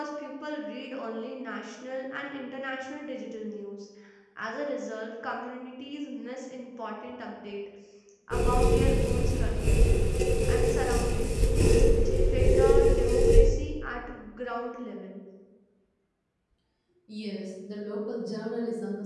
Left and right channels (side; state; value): both; identical; correlation 1.00